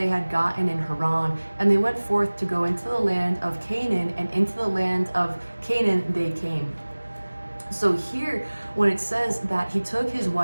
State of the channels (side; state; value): both; inverted; correlation -1.00